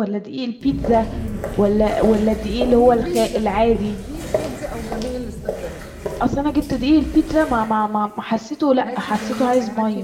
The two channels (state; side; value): identical; both; correlation 1.00